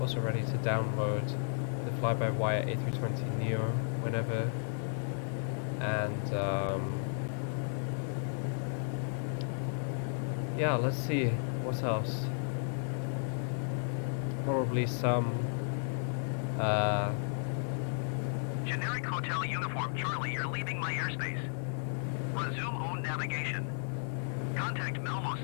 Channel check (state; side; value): silent; right; 55 dB below the other